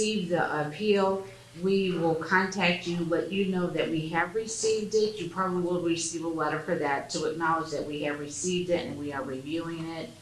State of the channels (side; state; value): both; identical; correlation 1.00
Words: the appeal, we will contact you, let you know that we have received it. You probably will receive a letter for that to acknowledge that we have received it and we are reviewing it.